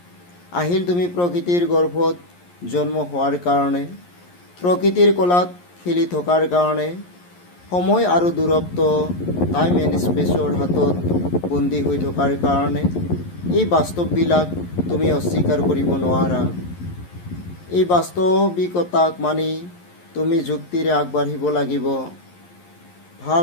আহিল তুমি প্ৰকৃতিৰ গৰ্ভত জন্ম হোৱাৰ কাৰণে, প্ৰকৃতিৰ কোলাত খেলি থকাৰ কাৰণে, সময় আৰু দূৰত্ব টাইম এণ্ড স্পেচৰ হাতত বন্দী হৈ থকাৰ কাৰণে। এই বাস্তৱবিলাক তুমি অস্বীকাৰ কৰিব নোৱাৰা। এই বাস্তৱিকতাক মানি তুমি যুক্তিৰে আগবাঢ়িব লাগিব।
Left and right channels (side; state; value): right; late; 11 ms